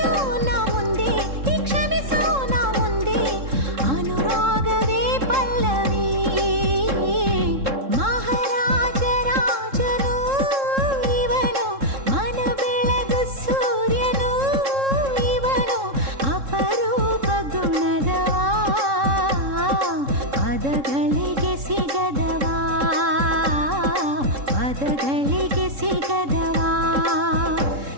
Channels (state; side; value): late; left; 3.7 ms